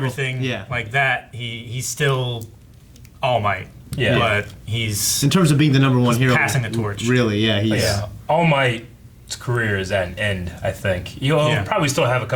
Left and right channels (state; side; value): identical; both; correlation 1.00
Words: everything yeah. like that, he's still All Might. Yeah. But he's In terms of being the number one hero, passing the torch. Really, yeah, he's. yeah. All Might's career is at an end, I think. He'll probably still have a